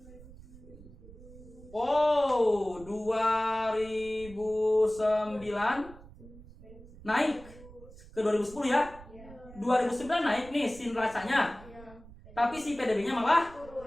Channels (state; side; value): noise; right; rumble, 19 dB below the sound